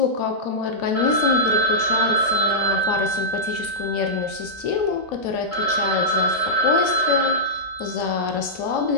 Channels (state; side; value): late; right; 2.9 ms